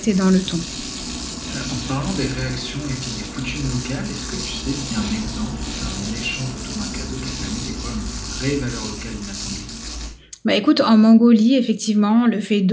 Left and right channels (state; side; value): identical; both; correlation 1.00